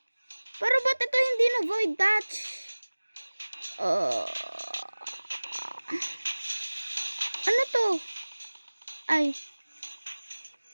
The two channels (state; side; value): inverted; both; correlation -1.00